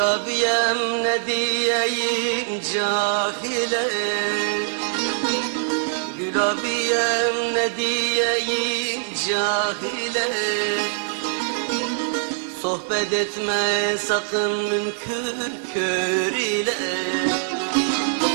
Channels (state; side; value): silent; left; 63 dB below the other